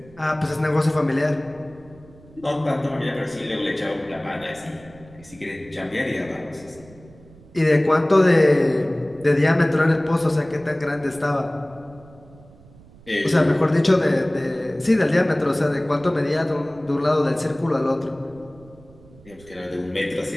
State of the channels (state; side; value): noise; right; rumble, 23 dB below the sound